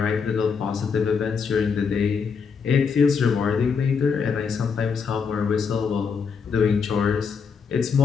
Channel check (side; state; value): right; quieter; 5.8 dB